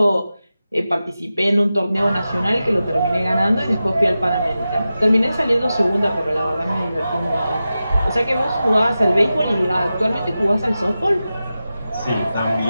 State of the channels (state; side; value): inverted; both; correlation -0.93